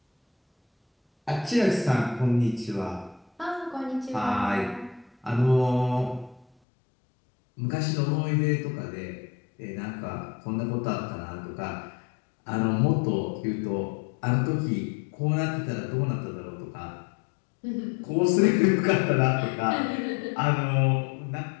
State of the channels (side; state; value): right; drops out; at 6.5 s